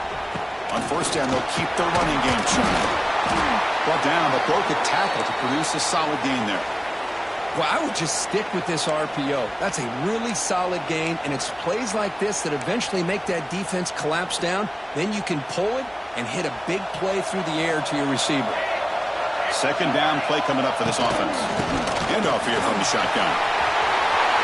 On first down, they'll keep their running game churning. Brought down, but broke a tackle to produce a solid gain there. Well, I would just stick with this RPO. That's a really solid gain, and it's plays like this that eventually make that defense collapse down. Then you can pull it and hit a big play through the air to your receiver. 2nd down play coming up for this offense. Handoff here from the shotgun.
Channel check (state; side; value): identical; both; correlation 1.00